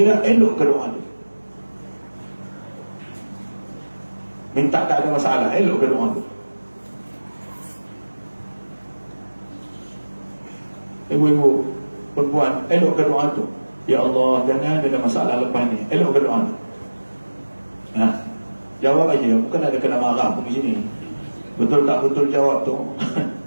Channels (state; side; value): inverted; both; correlation -1.00